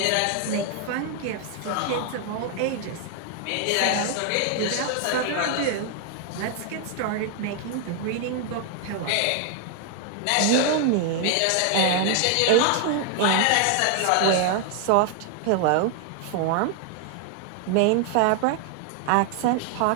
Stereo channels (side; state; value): both; different; correlation 0.00